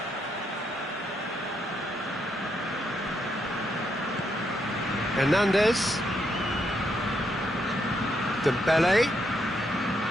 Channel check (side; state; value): both; normal; correlation 0.78